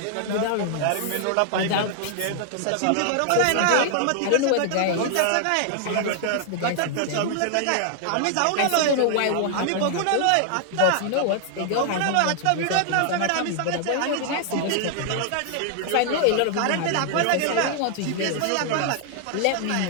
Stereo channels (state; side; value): different; both; correlation 0.00